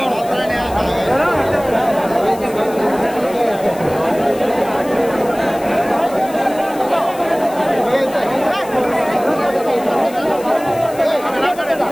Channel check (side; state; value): left; noise; hiss, 19 dB below the sound